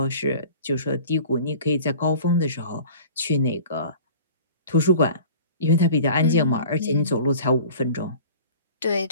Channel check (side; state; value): both; inverted; correlation -0.43